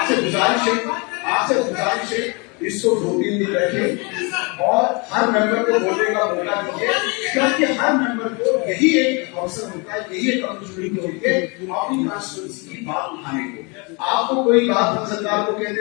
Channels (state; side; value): quieter; right; 30.4 dB